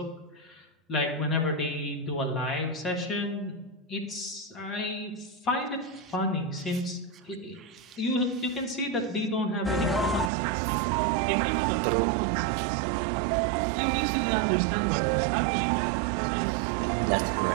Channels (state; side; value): drops out; left; at 10.3 s